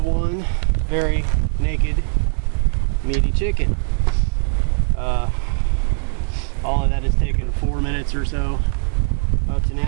one very naked, meaty chicken. All of that has taken 4 minutes or so up to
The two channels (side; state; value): left; silent; digital silence